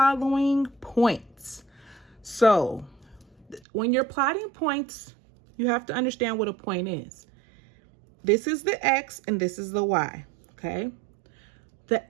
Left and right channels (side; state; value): left; drops out; at 3.6 s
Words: points. So, when you're plotting points, you have to understand what a point is. This is the X and this is the Y, okay?